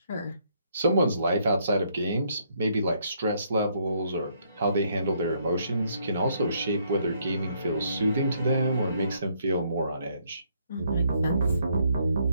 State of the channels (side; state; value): both; inverted; correlation -0.70